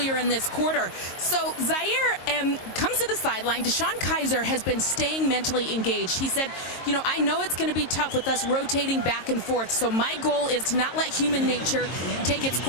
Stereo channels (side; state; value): right; late; 22 ms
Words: in this quarter. So Zaire comes to the sideline. Deshaun Kaiser has been staying mentally engaged. He said, you know, I know it's going to be tough with us rotating back and forth. So my goal is to not let human nature take its